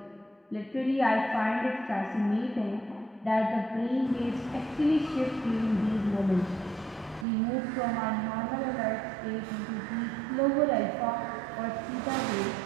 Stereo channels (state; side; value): drops out; left; at 7.2 s